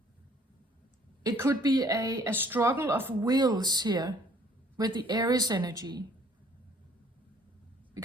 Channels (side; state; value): both; normal; correlation 0.58